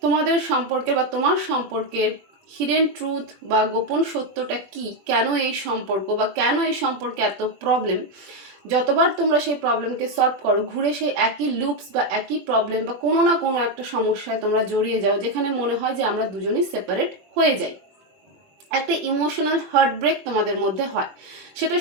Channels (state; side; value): late; left; 21 ms